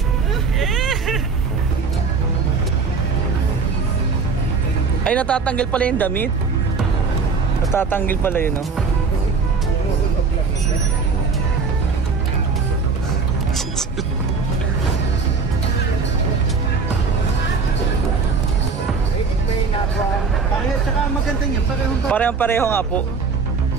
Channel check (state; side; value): quieter; left; 4.9 dB